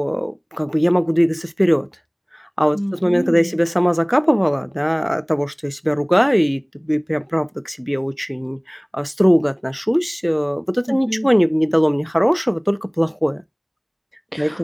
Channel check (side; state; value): both; identical; correlation 1.00